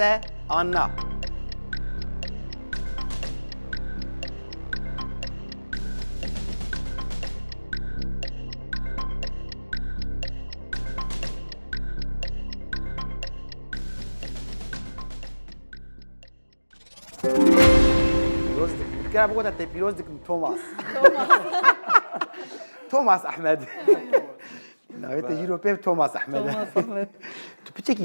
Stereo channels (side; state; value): both; inverted; correlation -1.00